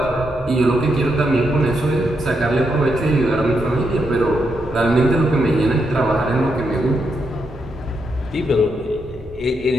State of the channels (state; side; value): normal; both; correlation 0.81